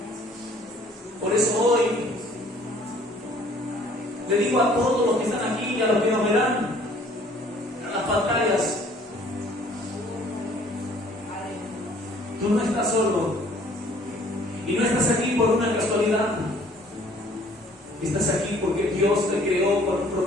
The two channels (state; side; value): normal; both; correlation 0.57